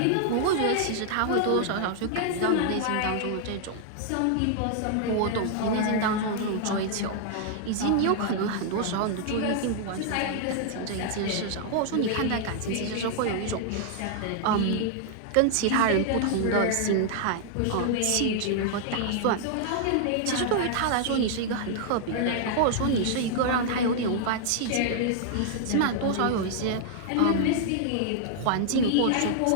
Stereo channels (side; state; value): both; different; correlation -0.01